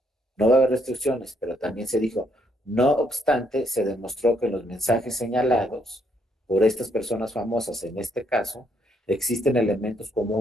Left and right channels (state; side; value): normal; both; correlation 0.71